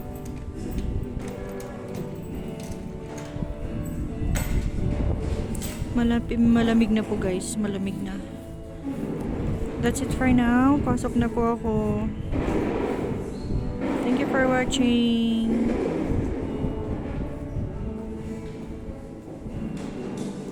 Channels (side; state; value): both; identical; correlation 1.00